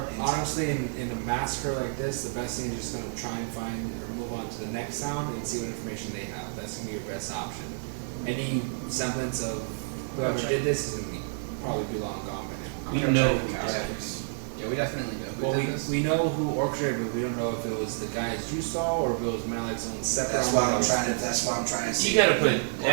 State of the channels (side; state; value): left; silent; digital silence